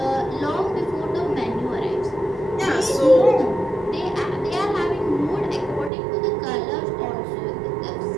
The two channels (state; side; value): drops out; left; at 5.9 s